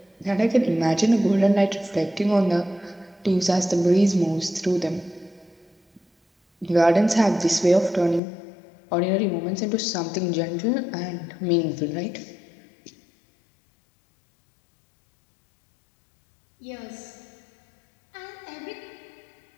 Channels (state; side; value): drops out; right; at 8.2 s